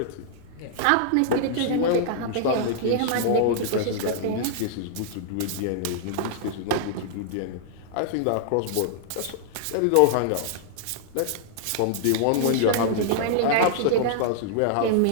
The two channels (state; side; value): different; both; correlation -0.01